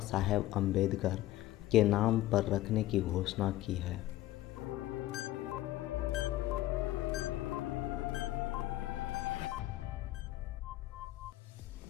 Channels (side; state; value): right; quieter; 15.6 dB